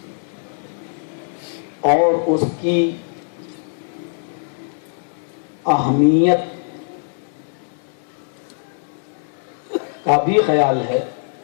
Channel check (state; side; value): silent; right; 64 dB below the other